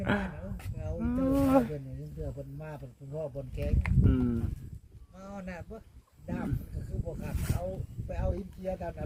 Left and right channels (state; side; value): identical; both; correlation 1.00